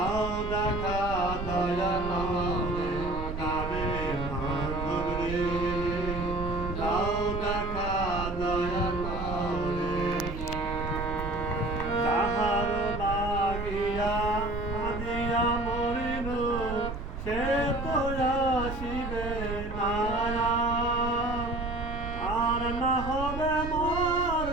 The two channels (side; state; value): right; noise; rumble, 7 dB below the sound